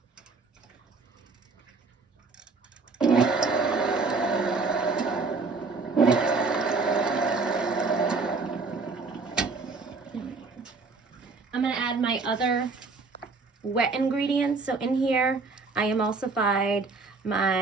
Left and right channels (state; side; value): quieter; left; 4.1 dB